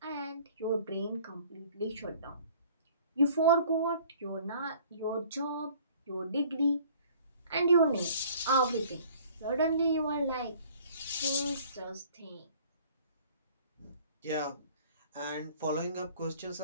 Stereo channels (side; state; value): both; inverted; correlation -0.53